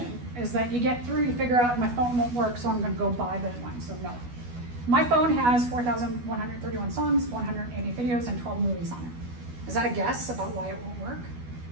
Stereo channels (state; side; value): late; left; 12 ms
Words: is that you get through, you figure out my phone won't work, so I'm gonna go buy that one, so no. My phone has 4,131 songs, 180 videos, and 12 movies on it. Is that a guess about why it won't work?